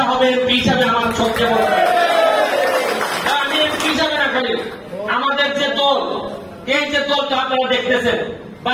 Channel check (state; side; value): identical; both; correlation 1.00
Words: হবে এমপি হিসাবে আমার সবচেয়ে বড় আমি এমপি হিসাবে না খালি আমাদের যে দল এই যে দলটা আপনারা দেখতেছেন